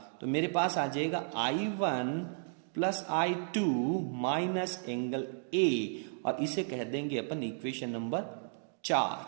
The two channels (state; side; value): silent; left; digital silence